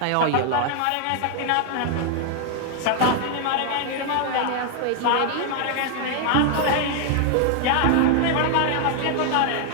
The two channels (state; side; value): different; both; correlation 0.00